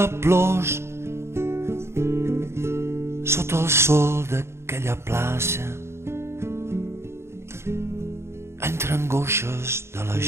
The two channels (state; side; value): late; left; 0.13 ms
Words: plors, sota el sol d'aquella plaça, entre angoixes de la